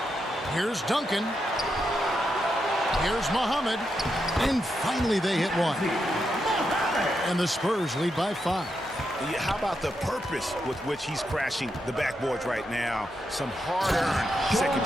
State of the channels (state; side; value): normal; both; correlation 0.84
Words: Here's Duncan. Here's Muhammad. And finally they hit one. And the Spurs lead by 5. Yeah, how about the purpose with which he's crashing the backboards right now? Some hard-earned second